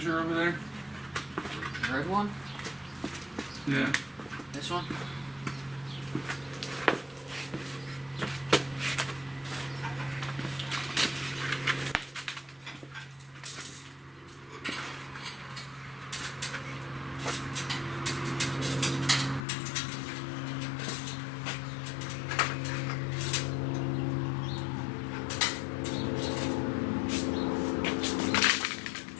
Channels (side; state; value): right; drops out; at 19.5 s